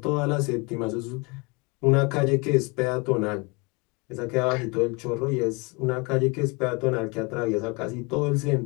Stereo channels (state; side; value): quieter; right; 28.7 dB